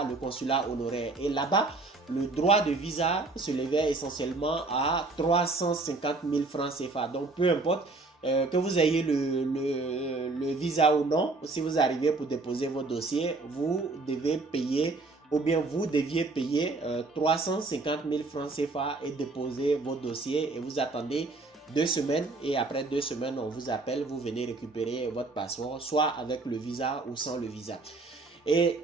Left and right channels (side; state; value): left; quieter; 3.5 dB